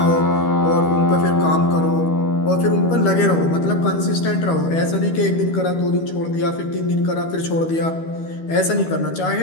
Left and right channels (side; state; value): right; late; 12 ms